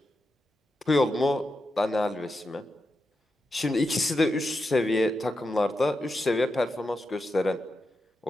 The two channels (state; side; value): normal; both; correlation 0.88